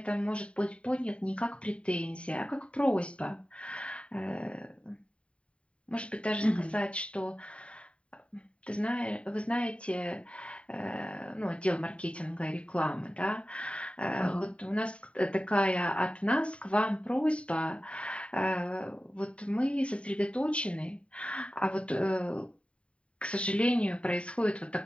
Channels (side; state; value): right; late; 0.061 ms